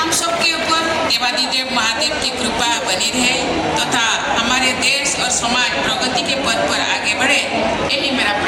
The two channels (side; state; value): both; identical; correlation 1.00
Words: सबके ऊपर देवादिदेव महादेव की कृपा बनी रहे तथा हमारे देश और समाज प्रगति के पथ पर आगे बढ़े, यही मेरा